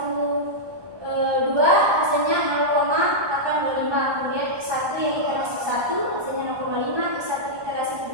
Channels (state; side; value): late; left; 1.2 ms